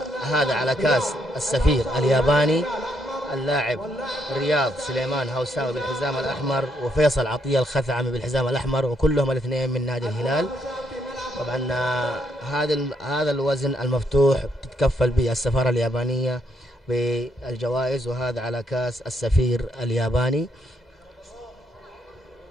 هذا على كاس السفير الياباني. اللاعب رياض سليمان هوساوي بالحزام الأحمر وفيصل عطية الخثعمي بالحزام الأحمر، وكلهم الاثنين من نادي الهلال. طبعا هذا الوزن المفتوح تتكفل به السفارة اليابانية بالجوائز، وهذا على كاس السفير الياباني.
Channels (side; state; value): both; normal; correlation 0.75